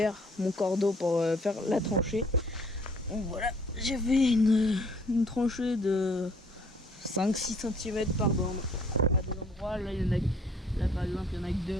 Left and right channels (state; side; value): normal; both; correlation 0.60